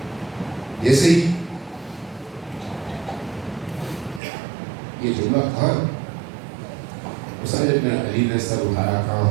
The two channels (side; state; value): left; drops out; at 4.2 s